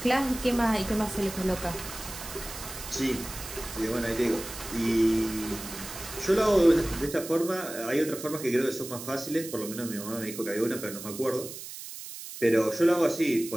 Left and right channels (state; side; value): noise; right; hiss, 11 dB below the sound